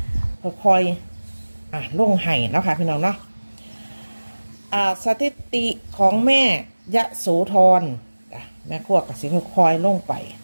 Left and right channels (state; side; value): inverted; both; correlation -1.00